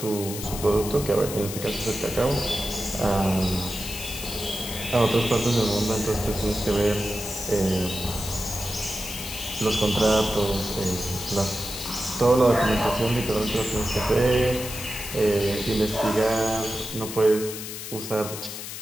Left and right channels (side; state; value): left; noise; hiss, 8 dB below the sound